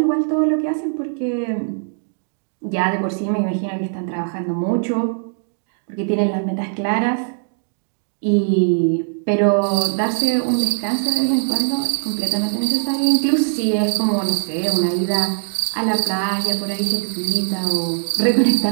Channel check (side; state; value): left; silent; digital silence